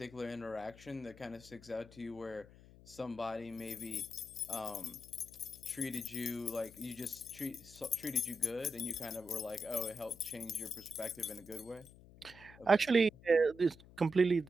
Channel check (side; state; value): left; noise; hum, 20 dB below the sound